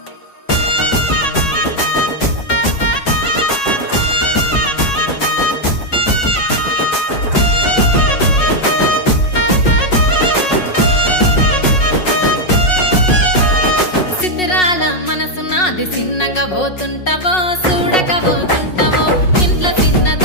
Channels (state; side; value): late; right; 5.5 ms